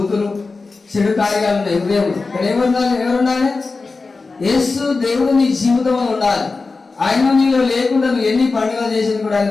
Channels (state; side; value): quieter; right; 4.0 dB